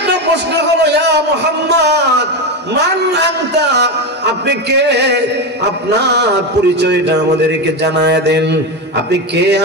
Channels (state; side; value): normal; both; correlation 0.15